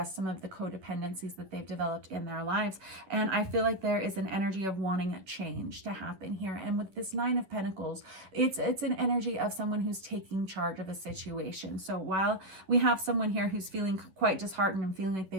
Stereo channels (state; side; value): late; left; 11 ms